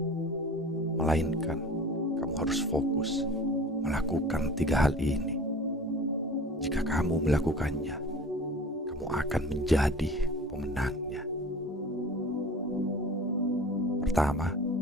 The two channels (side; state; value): both; normal; correlation 0.41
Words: melainkan kamu harus fokus melakukan 3 hal ini. Jika kamu melakukannya, kamu akan menjadi pemenangnya. Pertama,